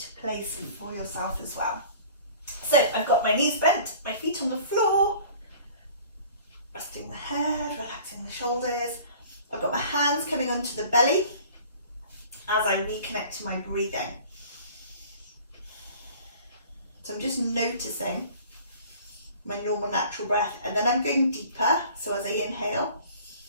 place for yourself as well. So I've got my knees bent, my feet on the floor, resting the head, relaxing the shoulders. I've got my hands coming onto the belly as I reconnect to my breathing. So I'm just noticing my normal natural breath, and then I'm going deeper. So as I inhale,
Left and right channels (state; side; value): inverted; both; correlation -0.47